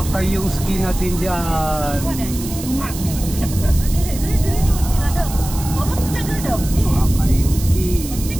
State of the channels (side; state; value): right; noise; hiss, 11 dB below the sound